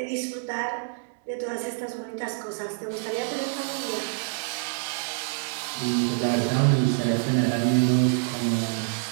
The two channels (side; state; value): left; silent; digital silence